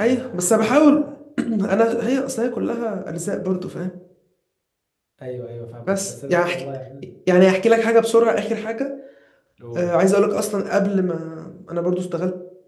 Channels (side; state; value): both; identical; correlation 1.00